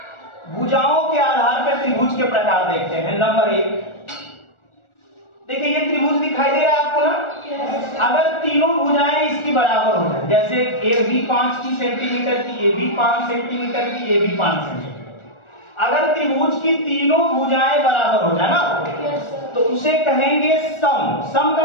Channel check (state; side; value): late; right; 1.4 ms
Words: भुजाओं के आधार पर त्रिभुज के प्रकार देखते हैं। नंबर 1, देखिए ये त्रिभुज दिखाई दे रहा है आपको ना। अगर तीनों भुजाएं इसकी बराबर हो जाए, जैसे ए भी 5 सेंटीमीटर की, ये भी 5 सेंटीमीटर की, ये भी 5 सेंटीमीटर, अगर त्रिभुज की तीनों भुजाएं बराबर हो जाए ना, तो उसे कहेंगे सम। सम